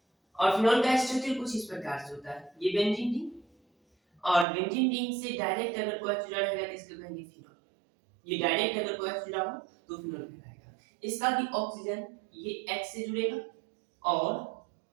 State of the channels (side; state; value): left; drops out; at 4.5 s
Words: और फिनॉल का स्ट्रक्चर कुछ इस प्रकार से होता है, ये बेंजीन रिंग और बेंजीन रिंग से डायरेक्ट अगर कोई जुड़ा रहेगा तो इसको कहेंगे फिनॉल। ये डायरेक्ट अगर कोई जुड़ा हो तो फिनॉल कहलाएगा। इसका भी ऑक्सीजन ये H से जुड़ेगा और